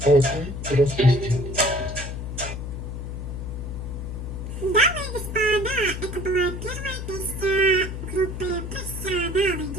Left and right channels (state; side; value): noise; left; hum, 6 dB below the sound